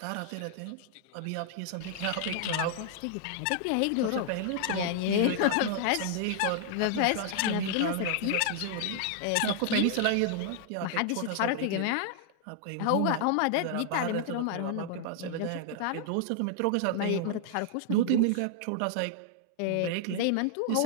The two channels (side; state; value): both; different; correlation 0.00